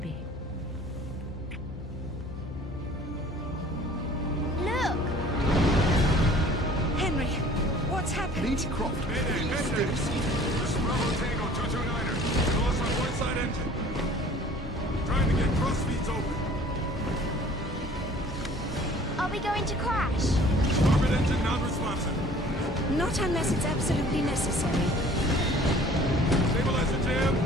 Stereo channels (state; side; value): normal; both; correlation 0.50